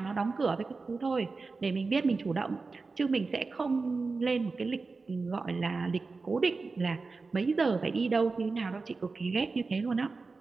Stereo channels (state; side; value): quieter; left; 4.1 dB